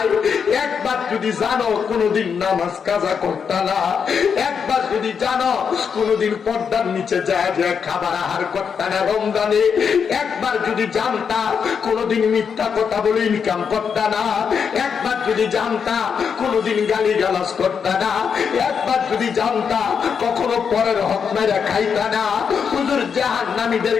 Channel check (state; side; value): quieter; right; 6.6 dB